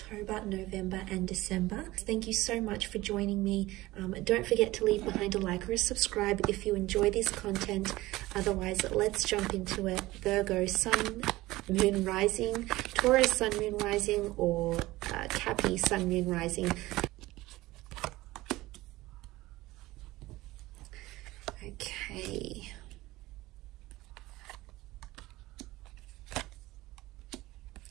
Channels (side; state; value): left; quieter; 18.6 dB